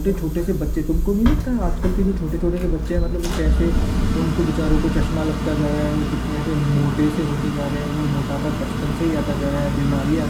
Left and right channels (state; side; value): identical; both; correlation 1.00